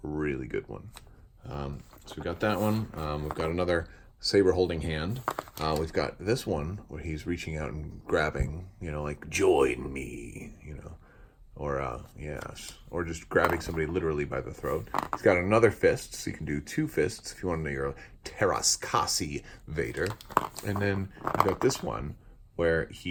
really good one. So we got that one. We've got another saber holding hand. We've got this one where he's reaching out and grabbing, you know, like join me, you know, or yes, or just grabbing somebody literally by the throat. He's got another fist, so you can do two fists if you want to know your Terraskasi Vader. And then you got this one where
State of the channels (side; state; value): both; identical; correlation 1.00